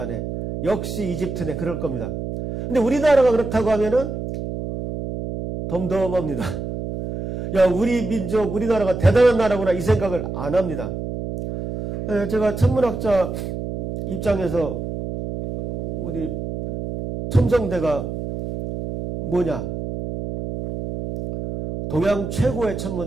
역시 이집트네. 그럴 겁니다. 근데 우리나라가 그렇다고 하면은 덤덤합니다. 야, 우리 민족, 우리나라가 대단한 나라구나 이 생각을 안 합니다. 제가 천문학자 입장에서 우리 첨성대가 뭐냐? 동양 최고의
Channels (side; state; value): right; noise; hum, 6 dB below the sound